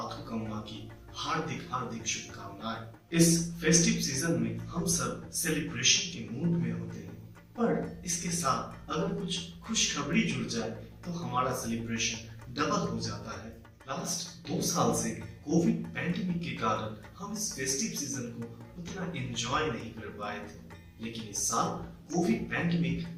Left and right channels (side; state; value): both; identical; correlation 1.00